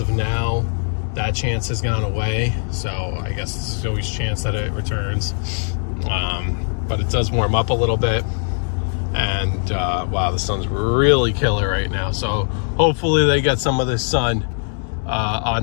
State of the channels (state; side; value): silent; right; 62 dB below the other